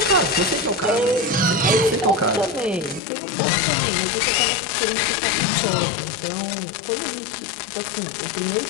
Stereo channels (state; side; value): drops out; right; at 3.0 s